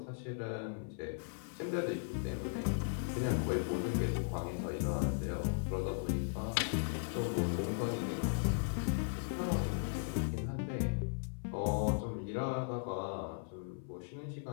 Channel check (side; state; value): right; silent; 53 dB below the other